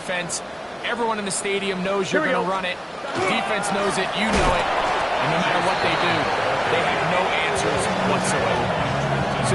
Everyone in the stadium knows you're going to run it. The defense knows it. You know it. And no matter what they do, they have no answers whatsoever. So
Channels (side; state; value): both; identical; correlation 1.00